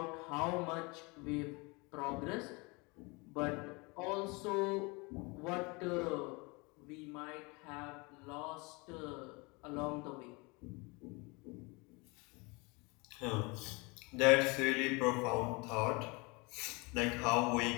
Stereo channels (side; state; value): right; quieter; 27.6 dB